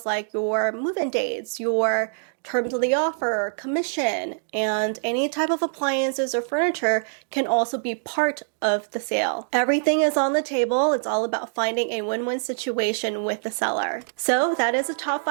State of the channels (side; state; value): left; silent; digital silence